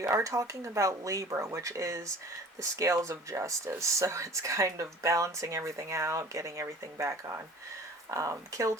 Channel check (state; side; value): normal; both; correlation 0.45